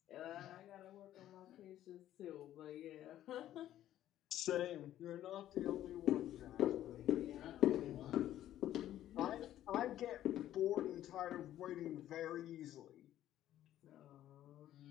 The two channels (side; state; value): right; quieter; 12.5 dB